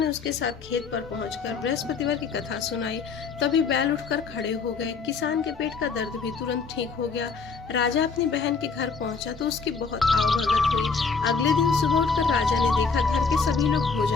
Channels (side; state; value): right; quieter; 5.0 dB